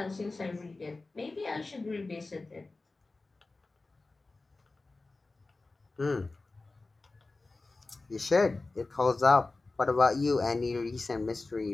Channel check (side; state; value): right; quieter; 3.4 dB